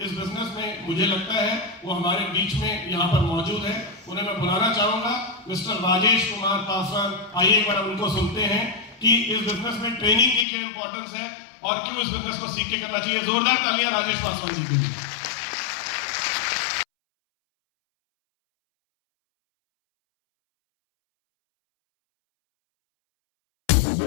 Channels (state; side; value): drops out; right; at 10.5 s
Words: इस बिजनेस में मुझे लगता है वो हमारे बीच में यहाँ पर मौजूद है। उन्हें मैं बुलाना चाहूंगा, मिस्टर राजेश कुमार पासवान। आइए एक बार उनको सुनते हैं कि इस बिजनेस में ट्रेनिंग की क्या इंपॉर्टेंस है और क्यों इस बिजनेस को सीख के करना चाहिए। जोरदार तालियां राजेश पासवान जी के लिए।